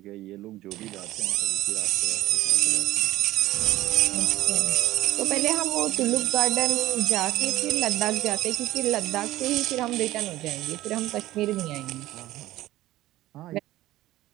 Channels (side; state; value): left; quieter; 16.0 dB